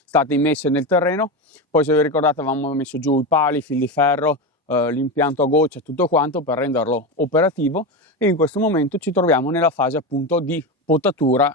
state immesse nel terreno. Poi, se vi ricordate, avevamo messo giù i pali, i fil di ferro, l'impianto a goccia, tutto quanto per renderlo operativo, e in questo momento ci troviamo nella fase appunto di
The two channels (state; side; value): normal; both; correlation 0.18